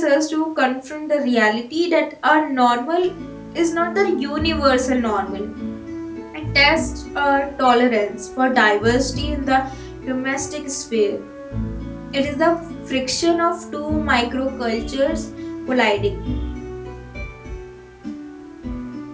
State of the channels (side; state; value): both; identical; correlation 1.00